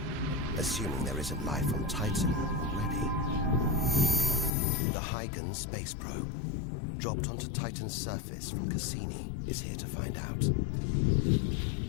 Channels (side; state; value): right; drops out; at 4.5 s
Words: Assuming there isn't life on Titan already. The Huygens space probe, dropped onto Titan's surface from Cassini, is here to find out.